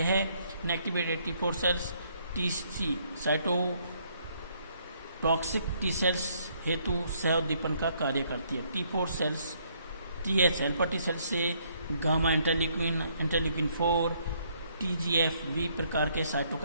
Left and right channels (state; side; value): inverted; both; correlation -0.69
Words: inactivated T4 cells TC cytotoxic T cells हेतु सह उद्दीपन का कार्य करती है। T4 सेल्स TH हेल्पर टी सेल्स से गामा इंटरल्यूकिन 4 TGF-V प्रकार के